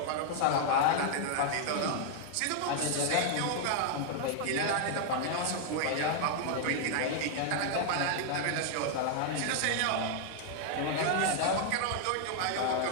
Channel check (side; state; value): both; different; correlation 0.00